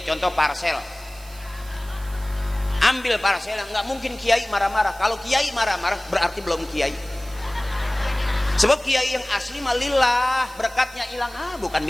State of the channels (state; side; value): noise; right; hiss, 21 dB below the sound